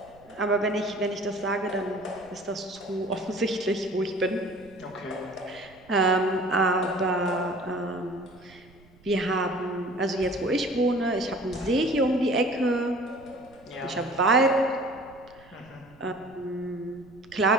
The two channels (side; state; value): right; noise; rumble, 26 dB below the sound